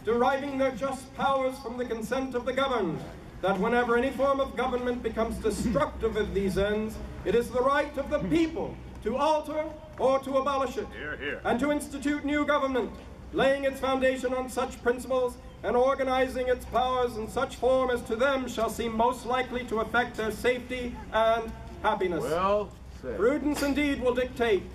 deriving their just powers from the consent of the governed, that whenever any form of government becomes destructive of these ends, it is the right of the people to alter or to abolish it, and to institute new government, laying its foundation on such principles and organizing its powers in such form as to them shall seem most likely to affect their safety and happiness. Well said. Prudence indeed will dictate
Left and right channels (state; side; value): identical; both; correlation 1.00